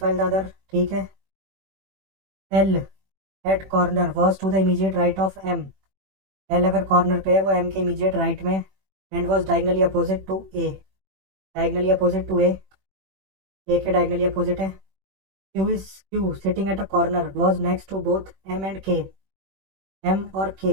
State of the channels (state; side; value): late; left; 21 ms